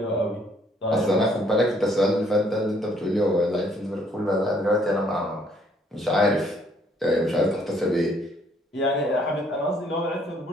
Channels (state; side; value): normal; both; correlation 0.65